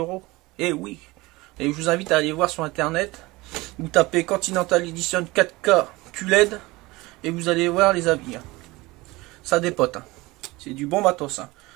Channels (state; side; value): quieter; left; 21.6 dB